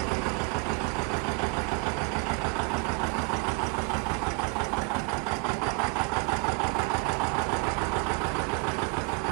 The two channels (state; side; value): quieter; left; 30.4 dB